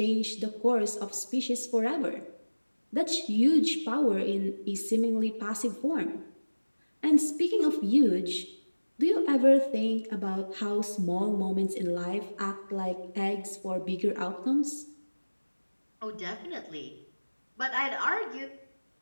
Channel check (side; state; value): both; inverted; correlation -1.00